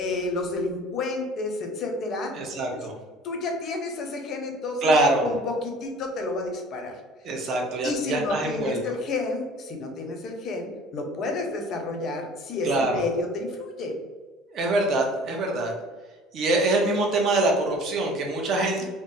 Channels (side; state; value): both; normal; correlation 0.47